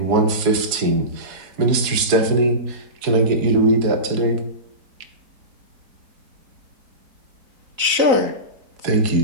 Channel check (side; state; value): left; late; 4.0 ms